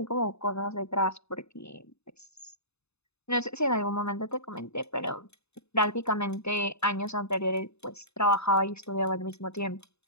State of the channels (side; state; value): right; late; 0.80 ms